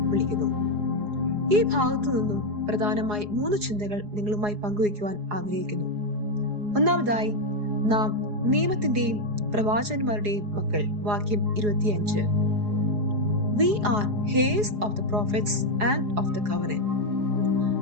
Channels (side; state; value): left; late; 4.8 ms